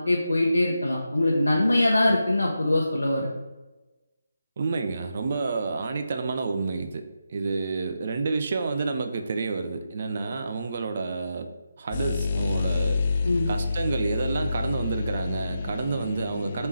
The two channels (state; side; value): inverted; both; correlation -0.86